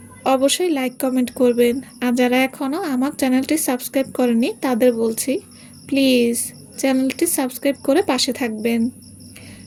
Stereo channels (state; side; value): identical; both; correlation 1.00